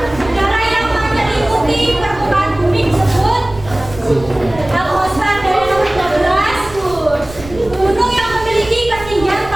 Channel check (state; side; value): noise; right; rumble, 16 dB below the sound